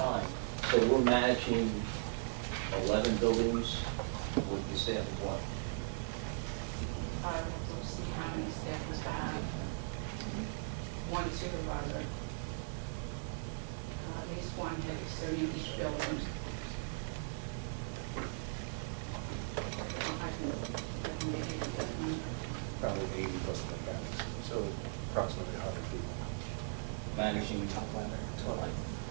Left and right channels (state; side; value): silent; left; digital silence